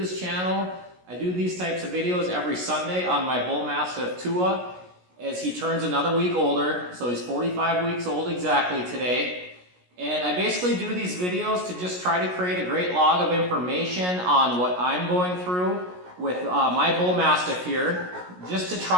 channel, I do these types of videos every Sunday on my Bullmastiff Tua as he turns another week older. So he's 45 weeks old exactly today. And I basically do these videos to just try to create a great log of information on what I'm going through with my Bullmastiff here, just to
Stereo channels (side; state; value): left; late; 17 ms